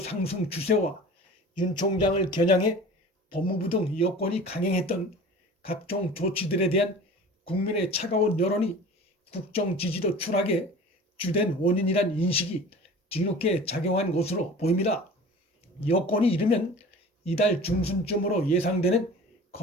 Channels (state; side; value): normal; both; correlation 0.40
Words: 추세와 윤 총장을 겨냥해 법무부 등 여권이 강행했던 각종 조치들에 대한 국민의 차가운 여론이 국정 지지도 추락의 주된 원인이란 인식이 뒤늦게 작용한 것으로 보입니다. 여권이 이르면 이달 중순쯤으로 예상되는